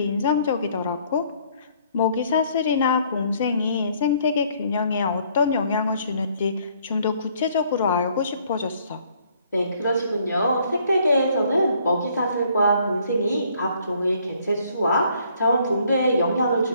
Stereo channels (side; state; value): both; inverted; correlation -0.63